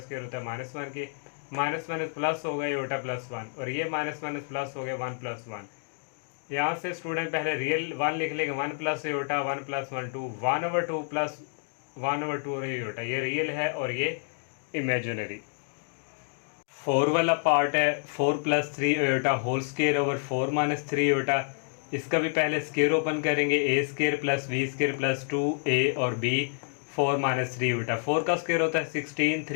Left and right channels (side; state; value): right; silent; 59 dB below the other